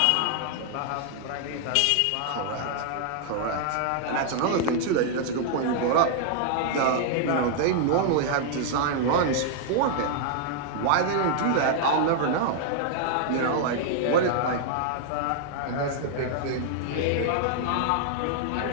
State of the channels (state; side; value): different; both; correlation -0.01